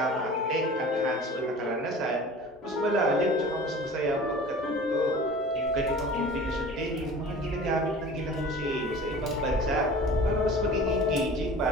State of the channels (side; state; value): both; normal; correlation 0.41